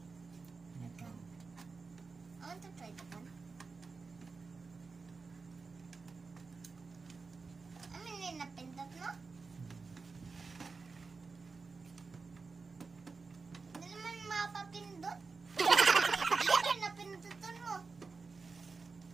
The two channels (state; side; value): quieter; left; 4.4 dB